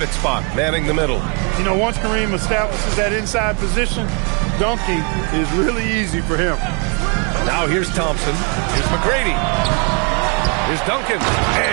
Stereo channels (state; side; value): quieter; left; 36.1 dB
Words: spot, manning the middle. You know, once Kareem establishes that inside position, dunking is really easy for him. Now here's Thompson. Here's McGrady. Here's Duncan.